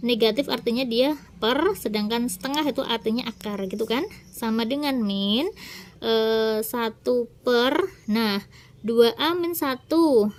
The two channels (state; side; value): identical; both; correlation 1.00